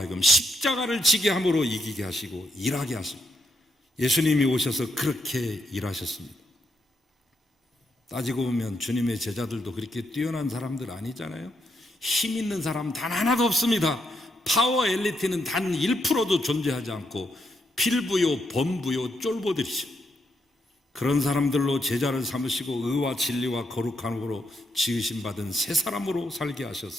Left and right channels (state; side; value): normal; both; correlation 0.79